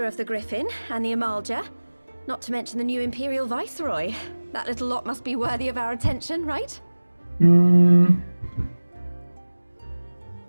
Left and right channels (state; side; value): inverted; both; correlation -1.00